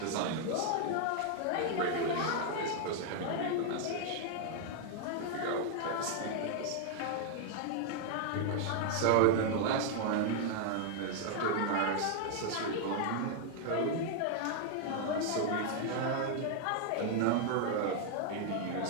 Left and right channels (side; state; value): both; different; correlation 0.00